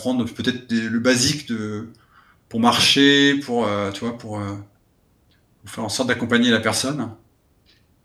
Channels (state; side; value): identical; both; correlation 1.00